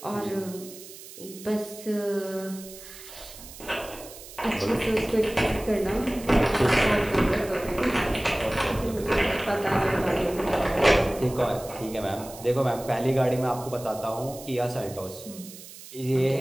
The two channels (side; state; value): right; noise; hiss, 16 dB below the sound